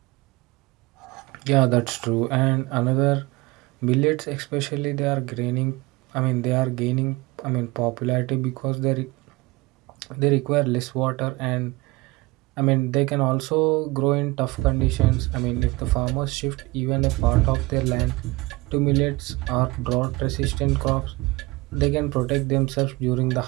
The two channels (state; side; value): quieter; left; 22.7 dB